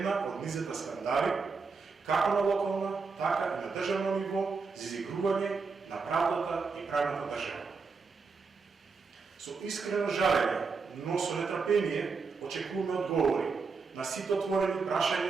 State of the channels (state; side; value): quieter; left; 4.8 dB